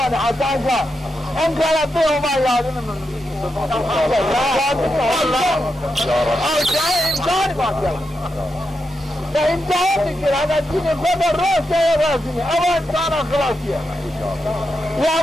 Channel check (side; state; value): both; normal; correlation 0.86